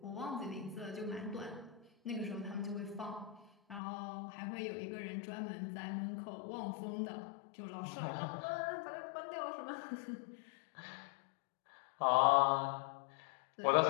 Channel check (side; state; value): right; drops out; at 3.8 s